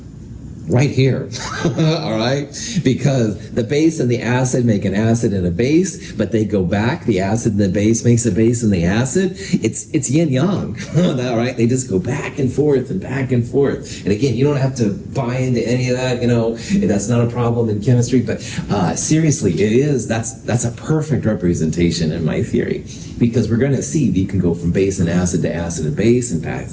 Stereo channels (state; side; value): identical; both; correlation 1.00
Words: right here, all right? Because the base and the acid make an acid and a base, but they go back. The acid and the base makes a base and the acid. It's yin yang, all right? They just go back and forth and back and forth. And again, you don't have to buy into any of that, that's not a problem in chemistry, but seriously, that's a perfect representation in my theory, because we're going to see that you can go from base and acid and base and